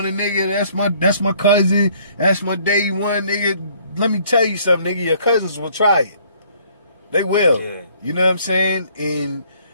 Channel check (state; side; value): inverted; both; correlation -0.61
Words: a nigga. That's my cousin. That's my day one, nigga. Let me tell you something, nigga. Your cousins will try it. They will. Yeah. You know what I'm saying? And